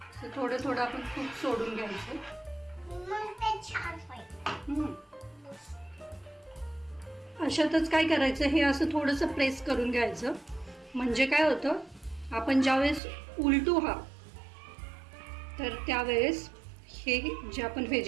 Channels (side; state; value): left; drops out; at 13.0 s